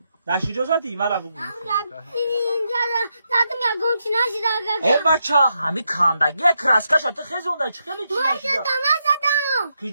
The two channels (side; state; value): both; inverted; correlation -0.82